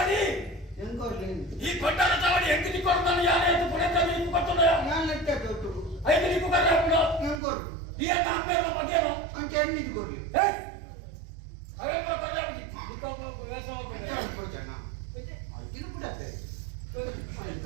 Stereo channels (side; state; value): left; drops out; at 7.4 s